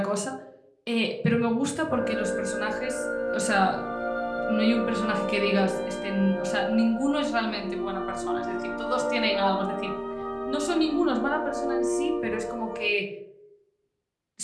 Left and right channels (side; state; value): both; identical; correlation 1.00